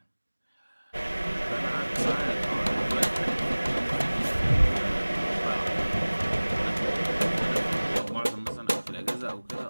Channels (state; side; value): inverted; both; correlation -1.00